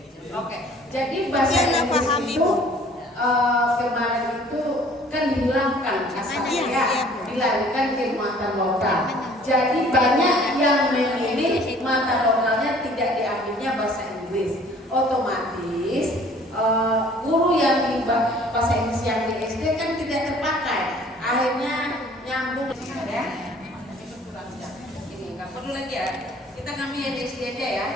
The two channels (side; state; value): both; normal; correlation 0.53